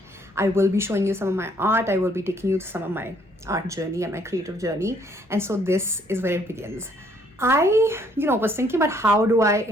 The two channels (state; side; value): normal; both; correlation 0.65